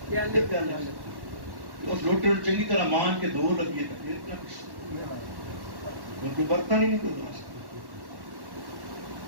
اس لوٹے کو چنگی طرح مان کے دو لگیے تو برتن ہی نہیں کوئی دو.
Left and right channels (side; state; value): left; late; 1.1 ms